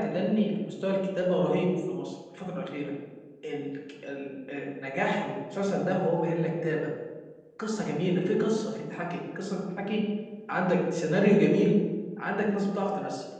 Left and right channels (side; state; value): both; identical; correlation 1.00